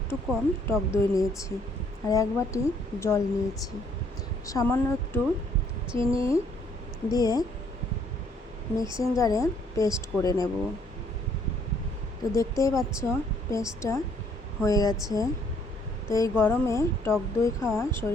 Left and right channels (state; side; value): normal; both; correlation 0.65